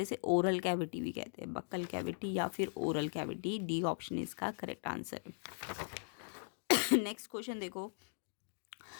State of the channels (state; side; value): silent; right; digital silence